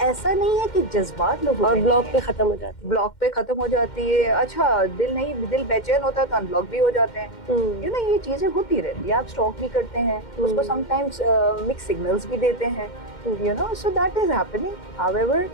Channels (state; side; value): late; right; 2.1 ms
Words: ऐसा नहीं है कि जज्बात लोगों और में ब्लॉग नहीं पे है। खत्म हो जाती ब्लॉक पे खत्म हो जाती है। अच्छा, दिल बेचैन होता है तो अनब्लॉक भी हो जाते हैं। है। ये चीजें होती रहती है। आप स्टॉक भी करते हैं, उसको समटाइम्स मिक्स सिग्नल्स भी देते हैं, so that is happening. However